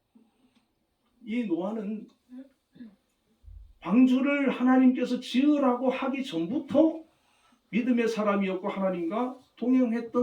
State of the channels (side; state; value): both; identical; correlation 1.00